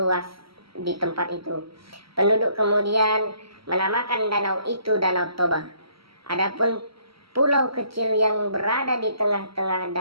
di tempat itu. Penduduk kemudian menamakan danau itu Danau Toba. Adapun pulau kecil yang berada di tengah-tengah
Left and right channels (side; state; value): left; late; 0.75 ms